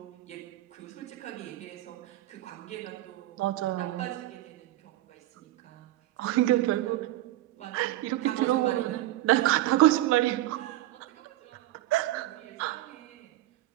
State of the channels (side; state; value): left; quieter; 15.3 dB